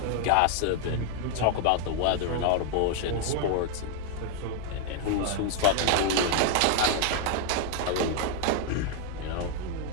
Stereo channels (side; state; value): both; different; correlation 0.00